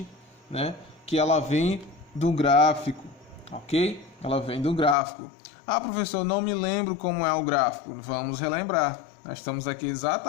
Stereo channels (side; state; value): right; drops out; at 5.0 s